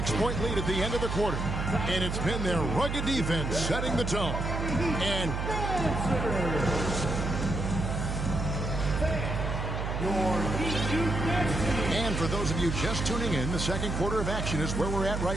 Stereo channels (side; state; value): right; noise; hum, 2 dB below the sound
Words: lead at the end of the quarter. And it's been their rugged defense setting the tone. And for those of you just tuning in, the second quarter of action is where we're at